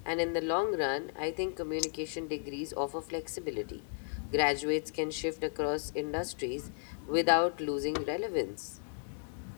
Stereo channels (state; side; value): silent; right; digital silence